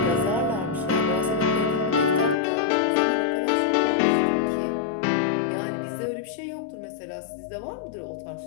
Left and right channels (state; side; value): drops out; right; at 2.4 s